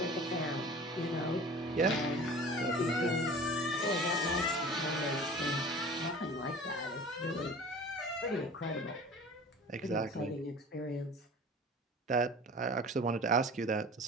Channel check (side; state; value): both; normal; correlation 0.41